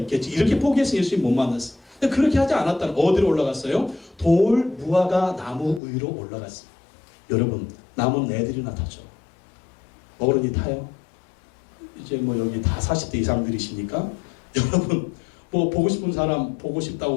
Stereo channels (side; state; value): right; drops out; at 5.8 s